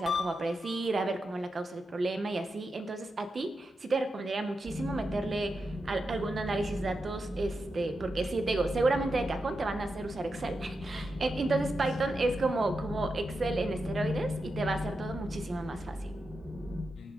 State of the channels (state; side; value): normal; both; correlation 0.88